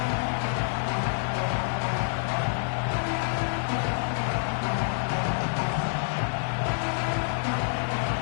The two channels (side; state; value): right; silent; digital silence